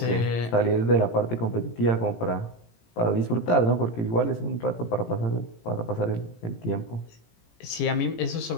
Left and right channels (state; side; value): late; right; 18 ms